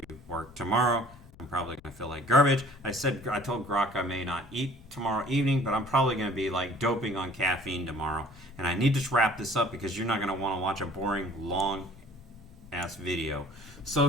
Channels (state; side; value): noise; left; rumble, 23 dB below the sound